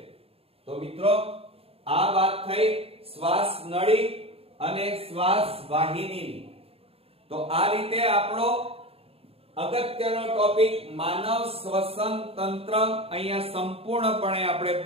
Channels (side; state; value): left; late; 0.28 ms